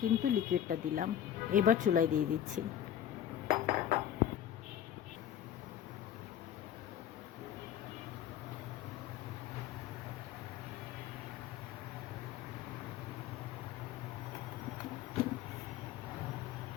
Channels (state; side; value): quieter; right; 10.3 dB